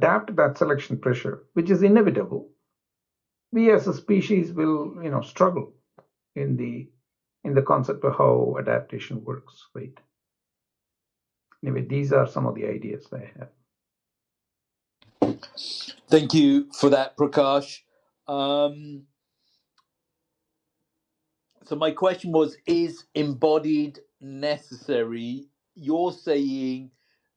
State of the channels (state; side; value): identical; both; correlation 1.00